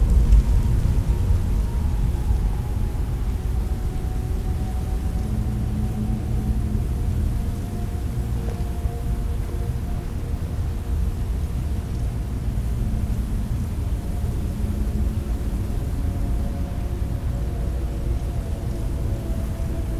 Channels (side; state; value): both; identical; correlation 1.00